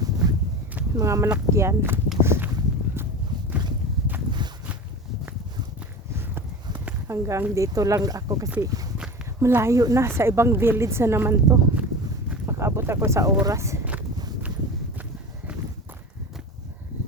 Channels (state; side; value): normal; both; correlation 0.31